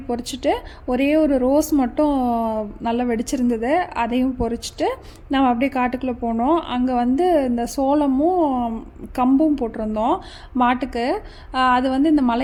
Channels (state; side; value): identical; both; correlation 1.00